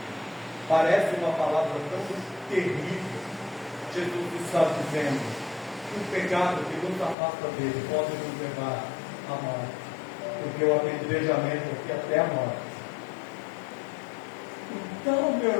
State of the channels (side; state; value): right; drops out; at 7.2 s